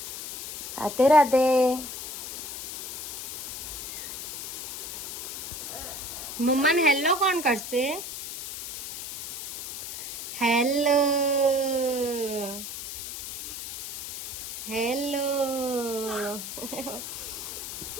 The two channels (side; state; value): left; noise; hiss, 7 dB below the sound